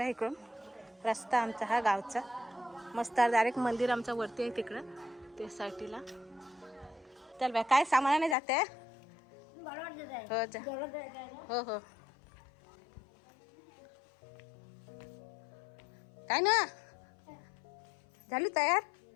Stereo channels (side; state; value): right; drops out; at 8.3 s